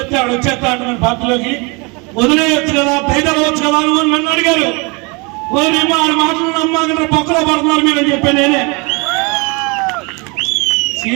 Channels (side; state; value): left; quieter; 29.4 dB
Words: ఆడు వచ్చేస్తా అంటున్నాను పార్టీలోకి. వదిలేయచ్చు కదా, దయదలవచ్చు కదా అని నన్ను అడిగారు. వదిలేమో ఆడు మాటలు నమ్మకంటే పక్కలో పడుతున్నారు మీరు అని చెప్పాను నేనే.